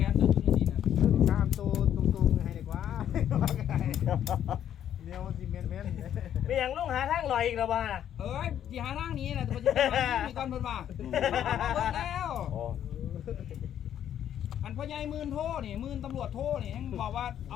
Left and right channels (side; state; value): right; quieter; 10.2 dB